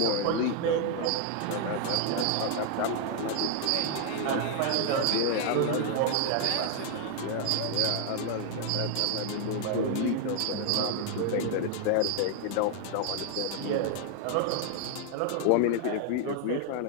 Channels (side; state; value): both; different; correlation 0.00